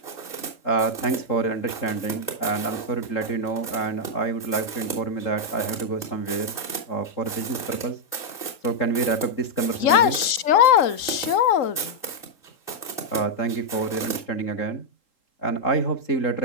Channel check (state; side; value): late; right; 3.8 ms